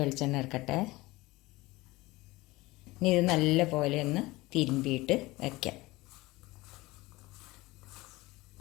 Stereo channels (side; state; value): right; quieter; 20.6 dB